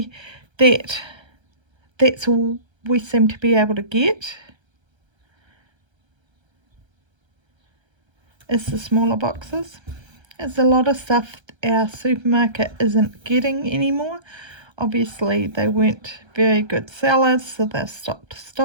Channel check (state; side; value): late; left; 1.3 ms